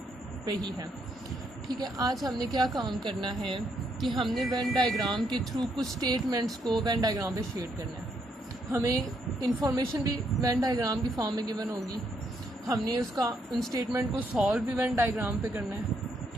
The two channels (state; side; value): normal; both; correlation 0.75